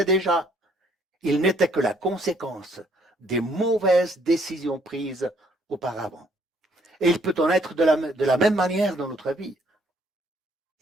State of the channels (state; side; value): normal; both; correlation 0.65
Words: déjà. Il n'était que la conséquence des mauvaises décisions prises auparavant. Et il peut en être de la même manière dans notre vie.